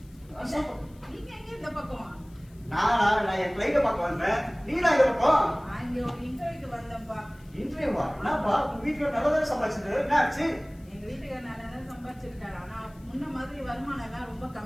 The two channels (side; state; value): left; noise; hiss, 30 dB below the sound